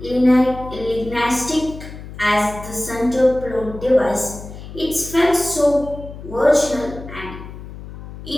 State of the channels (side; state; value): left; noise; hum, 13 dB below the sound